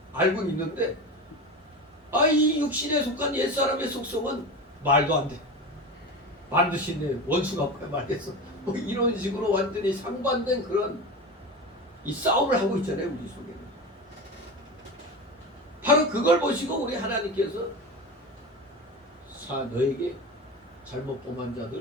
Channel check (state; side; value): normal; both; correlation 0.26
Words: 알고 있는데 이 육신에 속한 옛사람의 속성은 말도 안 돼. 반드시 내 원수가 뭐야 말겠어. 뭐 이런 식으로 완전히 상반된 그런 이 싸움을 하고 있잖아요, 우리 속에는. 바로 그걸 보시고 우리 하나님께서 너에게 잘못 범한